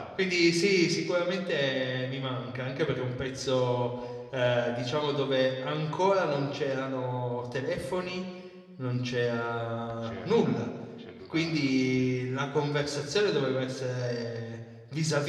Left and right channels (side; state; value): both; identical; correlation 1.00